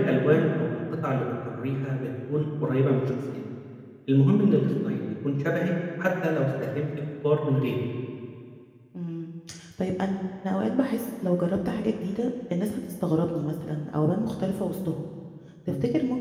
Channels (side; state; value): both; identical; correlation 1.00